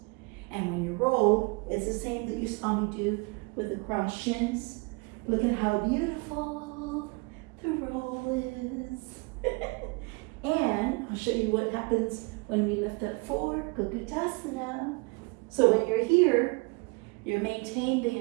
And when you roll, it's the same that you saw me do with the crossed shins. Look at how beautiful the roll is. And I'll show you what happens when we lift up for Chikitsa. So when you're here, you maintain the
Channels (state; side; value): quieter; left; 29.1 dB